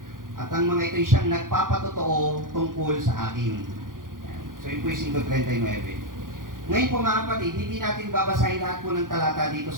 at ang mga ito'y siyang nagpapatotoo tungkol sa akin. So yun po yung 5:39. Ngayon po mga kapatid, hindi natin babasahin lahat po ng talata dito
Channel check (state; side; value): late; left; 0.90 ms